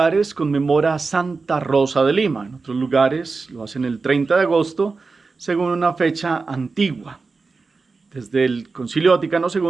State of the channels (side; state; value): left; quieter; 4.2 dB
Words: conmemora a Santa Rosa de Lima. En otros lugares lo hacen el 30 de agosto, según una fecha antigua. Desde el Concilio Vaticano